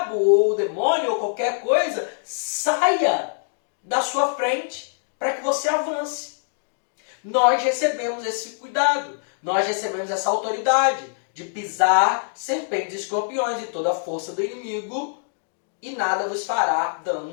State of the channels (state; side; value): silent; right; digital silence